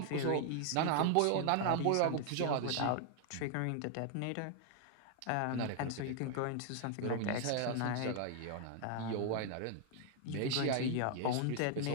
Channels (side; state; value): both; different; correlation 0.00